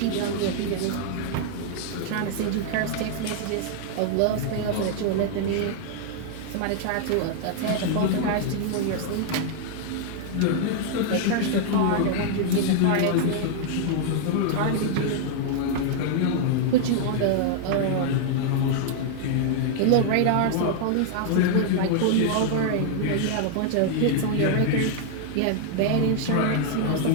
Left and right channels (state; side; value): different; both; correlation 0.00